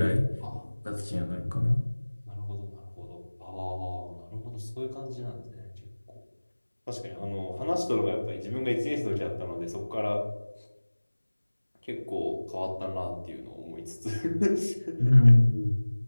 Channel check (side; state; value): both; inverted; correlation -1.00